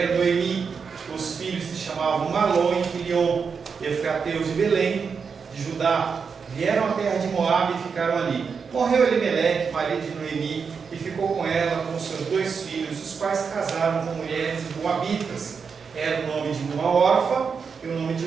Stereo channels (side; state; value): left; quieter; 5.8 dB